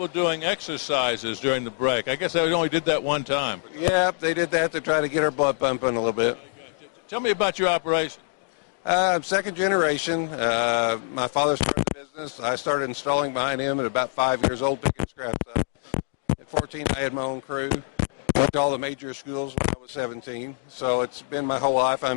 doing exercises during the break. I guess they only did that one time. Yeah, they did that to try to get our blood pumping a little bit. Tell me about your operation. I'm second generation. My father started the business. I started installing behind him at about 5 years old, picking scraps up. At 14, I had my own crew. Went to all the major schools when I was 17. So it's been my whole life.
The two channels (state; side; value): silent; right; digital silence